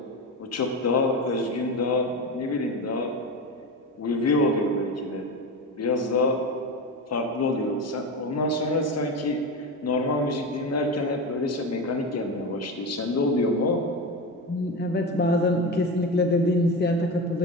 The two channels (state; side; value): normal; both; correlation 0.22